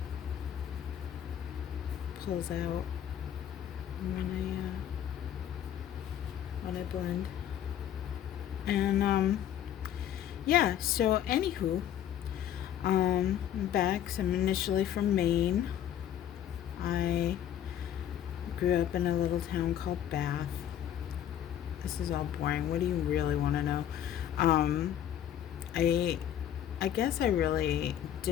pulls out when I blend. And yeah, so anywho, I'm back. So I'm initially from Maine. I grew up in a little town called Bath. This is all boring. What do you really want to know? I guess I really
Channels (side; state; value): right; quieter; 10.5 dB